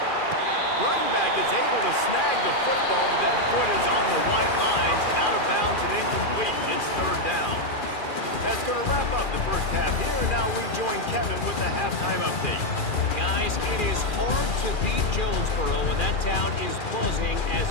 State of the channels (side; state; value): right; late; 2.4 ms